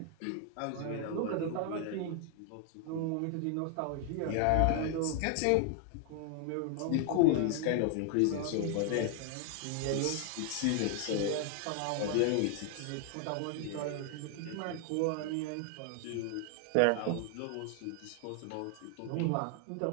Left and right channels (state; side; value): different; both; correlation 0.00